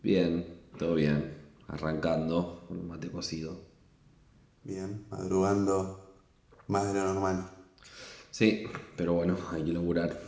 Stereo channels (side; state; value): both; identical; correlation 1.00